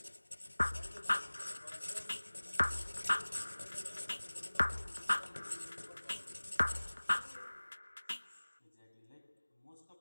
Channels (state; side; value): inverted; both; correlation -1.00